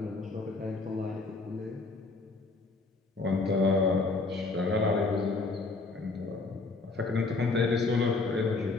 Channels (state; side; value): quieter; right; 3.7 dB